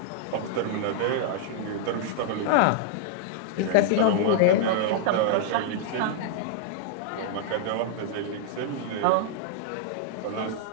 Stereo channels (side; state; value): both; different; correlation -0.01